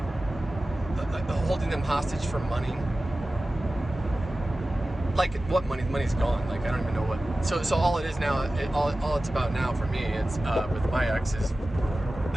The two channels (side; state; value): both; normal; correlation 0.96